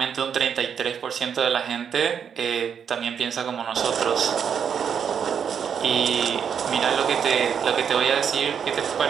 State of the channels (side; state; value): left; quieter; 7.5 dB